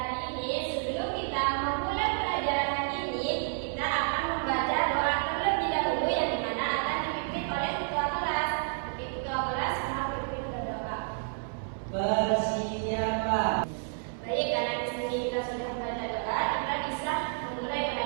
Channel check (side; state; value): left; silent; 58 dB below the other